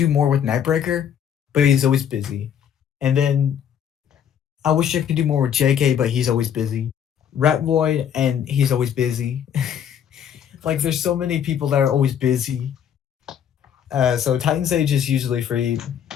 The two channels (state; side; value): quieter; right; 8.8 dB